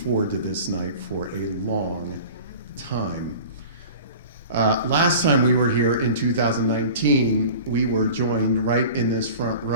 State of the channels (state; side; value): inverted; both; correlation -0.39